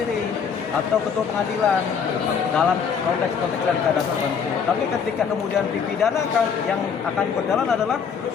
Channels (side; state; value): right; quieter; 6.6 dB